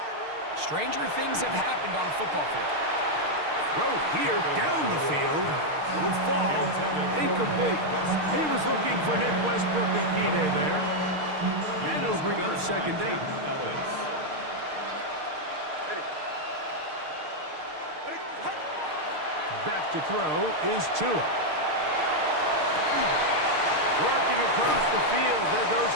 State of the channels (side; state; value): left; late; 6.5 ms